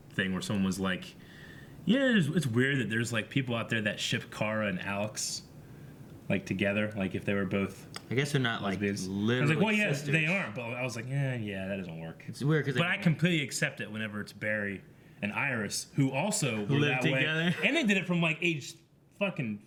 thing where someone was like, yeah, it's weird that there's like people out there that ship Kara and Alex like together, like if they were both. I guess they're not like literally. I was like, well, yeah, sisters. they aren't, but I was like, yeah, that doesn't work. It's weird because. But I completely accept it whenever it's Barry and Iris, who also were lived that together. way, and they did it from like age fucking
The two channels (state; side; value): identical; both; correlation 1.00